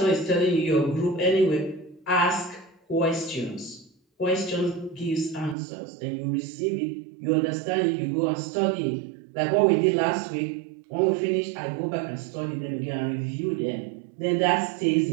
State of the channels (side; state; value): left; drops out; at 5.6 s